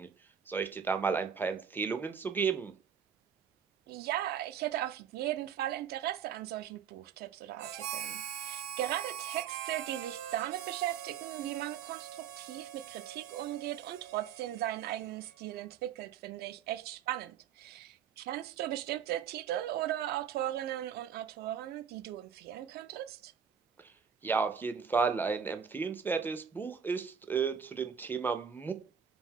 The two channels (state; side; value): quieter; left; 7.7 dB